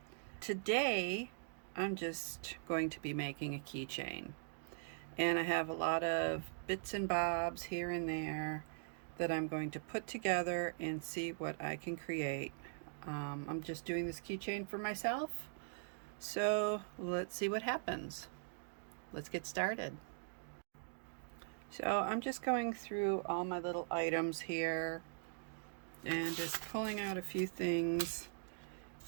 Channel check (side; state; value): left; silent; digital silence